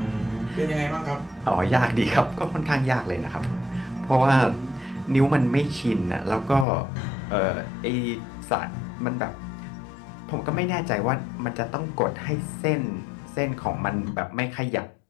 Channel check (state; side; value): drops out; right; at 6.7 s